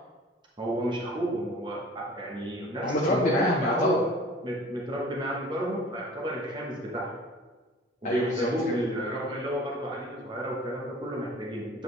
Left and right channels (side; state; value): both; normal; correlation 0.46